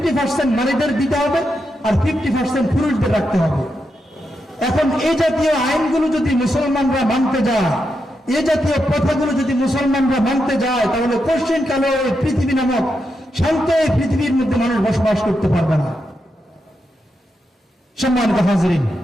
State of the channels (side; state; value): both; normal; correlation 0.85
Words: নারীদের দিতে হবে আর 50% পুরুষদের রাখতে হবে। এখন এই জাতীয় আইনগুলো যদি মুসলমানরা মানতে যায়, এই জাতীয় প্রথাগুলো যদি মুসলমানরা মানতে যায়, তাহলে পশ্চিমকালে ওই পৃথিবী নামক শান্ত এই পৃথিবীর মধ্যে মানুষ বসবাস করতে পারবে না। সম্মানিত হাজরিন,